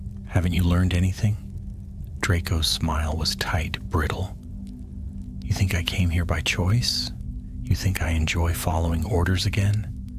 Haven't you learned anything?" Draco's smile was tight, brittle. "You think I came here by choice? You think I enjoy following orders again?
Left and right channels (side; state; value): both; identical; correlation 1.00